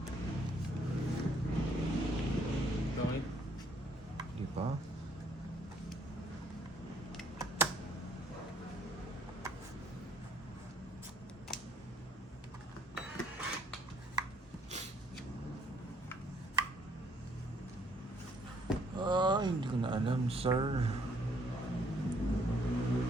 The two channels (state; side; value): normal; both; correlation 0.65